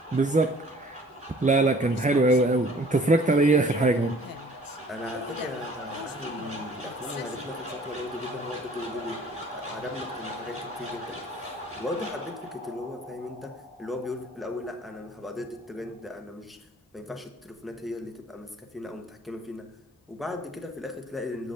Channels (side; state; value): both; normal; correlation 0.53